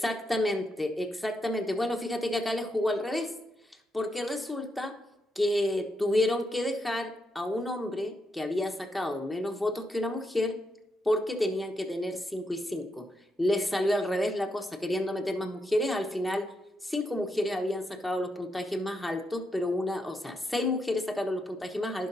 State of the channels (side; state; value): both; normal; correlation 0.82